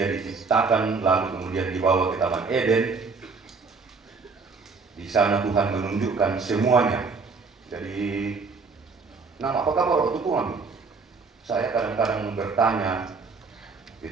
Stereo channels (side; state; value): left; quieter; 4.5 dB